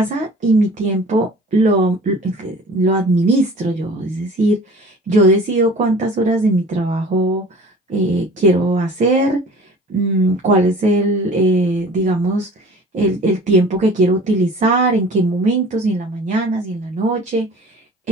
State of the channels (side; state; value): both; normal; correlation 0.44